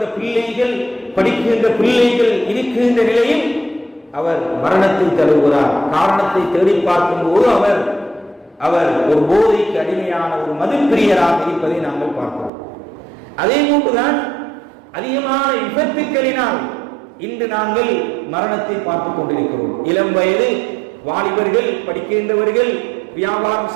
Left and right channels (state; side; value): drops out; left; at 12.5 s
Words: பிள்ளைகள், படிக்கின்ற பிள்ளைகள் இருக்கின்ற நிலையில் அவர் மரணத்தை தருகிறார். காரணத்தை தேடி பார்க்கும் போது அவர் ஒரு போதைக்கு அடிமையான ஒரு மதுப்பிரியராக இருப்பதை நாங்கள் பார்க்கிறோம். அதே போன்றுதான் அதிகமான விபத்துக்களினால் இன்று நாங்கள் மரணத்தை பார்த்துக் கொண்டிருக்கிறோம். இளம் வயது வாலிபர்கள், படிக்கின்றவர்கள், வியாபாரம்